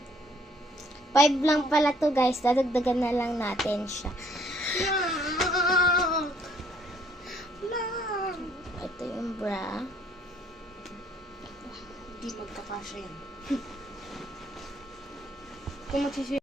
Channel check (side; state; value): both; normal; correlation 0.63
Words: 5 lang pala to guys. Dadagdagan na lang natin siya. Ito yung bra. Hindi magkakasya yan.